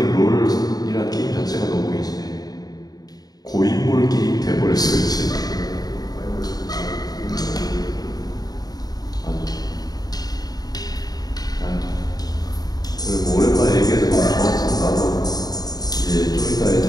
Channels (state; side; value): late; right; 0.19 ms